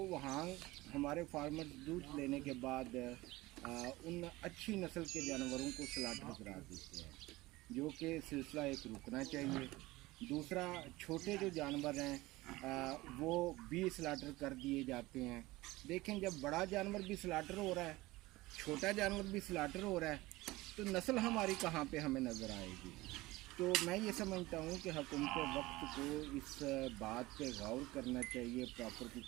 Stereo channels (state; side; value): quieter; left; 19.7 dB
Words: वहाँ हमारे फार्मर दूध लेने के बाद उन अच्छी नस्ल के जानवरों को स्लाटर करा देते हैं, जो कि सिलसिला एक रुकना चाहिए। दूसरा, छोटे जो जानवर हैं वो भी स्लाटर कर दिए जाते हैं। देखें, जब बड़ा जानवर भी स्लाटर हो रहा है, छोटा जानवर भी स्लाटर हो रहा है, तो नस्ल हमारी कहाँ पे हमें नज़र आएगी। तो मैं ये समझता हूँ कि हुकूमत वक्त को इस बात पे गौर करना चाहिए, प्रॉपर की